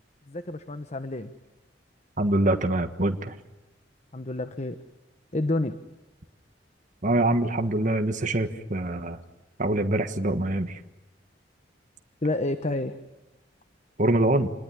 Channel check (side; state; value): both; normal; correlation 0.53